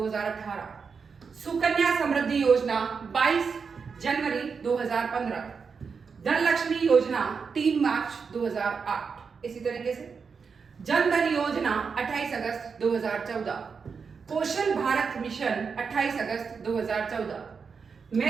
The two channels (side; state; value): left; quieter; 5.6 dB